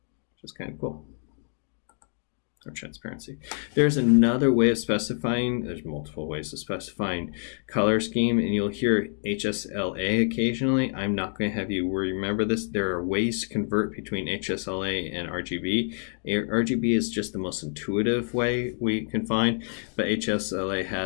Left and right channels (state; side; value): silent; right; 58 dB below the other